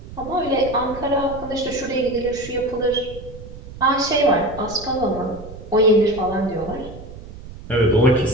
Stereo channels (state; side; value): noise; right; rumble, 15 dB below the sound